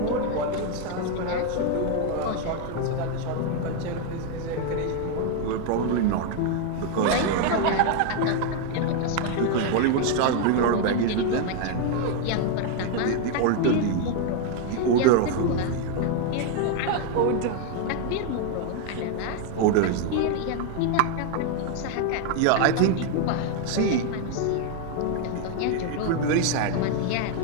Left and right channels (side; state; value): both; different; correlation 0.00